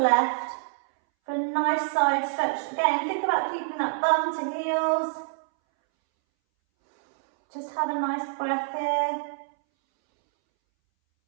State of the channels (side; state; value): left; silent; 61 dB below the other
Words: for a nice side stretch. Again, think about keeping that bum to heels. Just have a nice breath here.